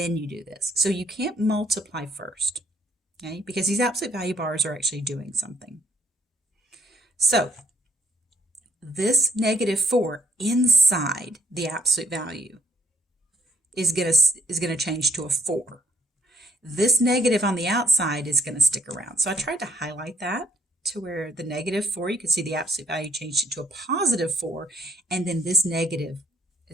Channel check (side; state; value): both; normal; correlation 0.65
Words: you do this. So you can't multiply first, okay? Because these absolute value bars are actually doing something. So this -4 inside the absolute value is gonna change to a 4. This negative on the outside is going to stick around. So I tried to highlight that to where the -4, you can see the absolute value changed it to a +4, and then this negative